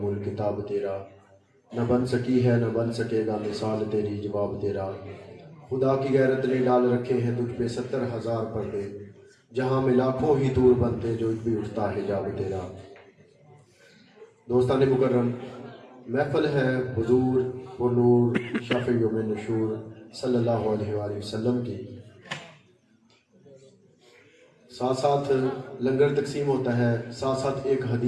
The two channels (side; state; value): both; identical; correlation 1.00